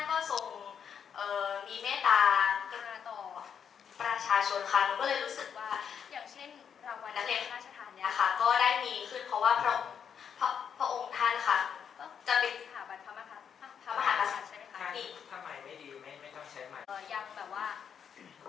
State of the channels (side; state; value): right; quieter; 7.6 dB